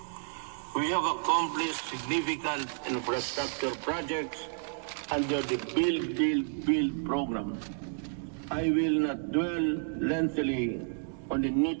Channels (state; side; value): silent; left; digital silence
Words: We have accomplished significant infrastructure projects under the Build program. I will not dwell lengthily on the